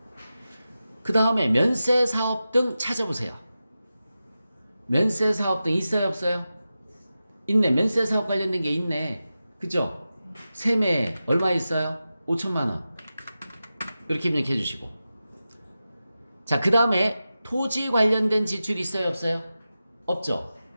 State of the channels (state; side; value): inverted; both; correlation -0.93